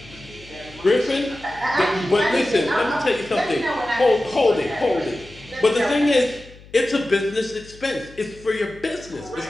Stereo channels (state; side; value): noise; left; hum, 22 dB below the sound